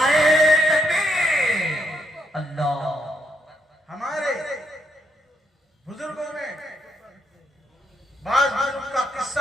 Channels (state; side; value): normal; both; correlation 0.77